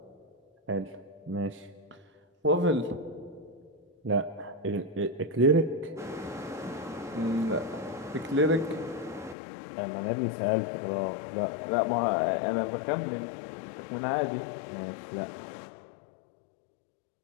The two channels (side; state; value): right; drops out; at 9.3 s